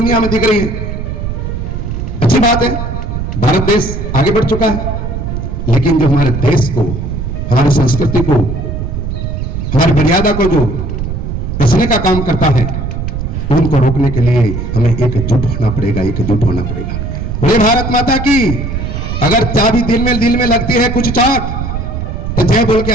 में दिख रही है, अच्छी बात है, भारत देश आगे बढ़ चुका है। लेकिन जो हमारे देश को, हमारी संस्कृति को, हमारी मर्यादा को जो बचने का काम करता है, उनको रोकने के लिए हमें एकजुट होना पड़ेगा, एकजुट होना पड़ेगा। बोले भारत माता की। अगर चाबी दिल में लगती है कुछ चोट, तो जय बोल के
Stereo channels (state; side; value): noise; right; rumble, 4 dB below the sound